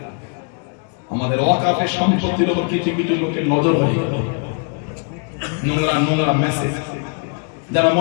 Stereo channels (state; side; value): quieter; right; 39.0 dB